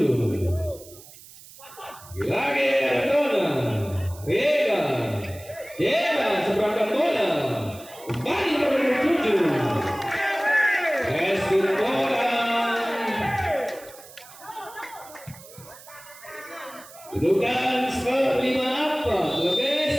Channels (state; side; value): noise; right; hiss, 20 dB below the sound